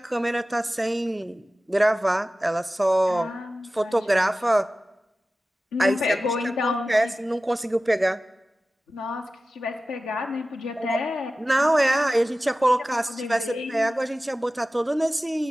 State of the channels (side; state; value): both; normal; correlation 0.95